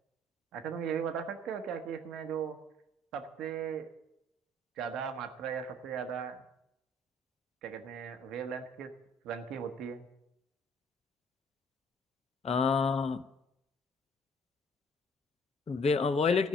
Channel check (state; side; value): normal; both; correlation 0.59